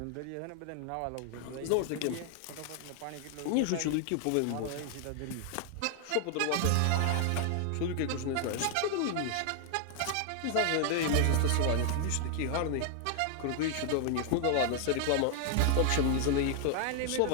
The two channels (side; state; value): both; different; correlation 0.00